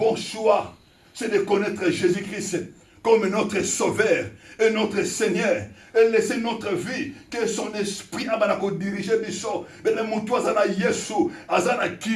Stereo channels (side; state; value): both; identical; correlation 1.00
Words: choix, c'est de connaître Jésus-Christ comme notre Sauveur et notre Seigneur. Et laisser notre vie, que son esprit a dirigé biso. Mais le moutou azana Yesu, azana